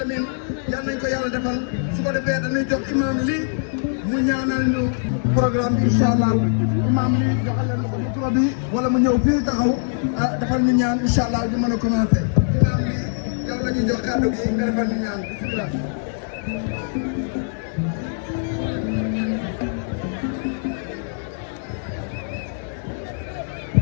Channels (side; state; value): right; silent; digital silence